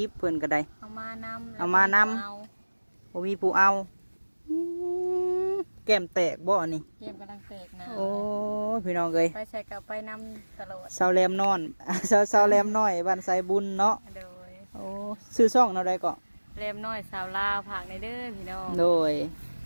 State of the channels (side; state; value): both; inverted; correlation -1.00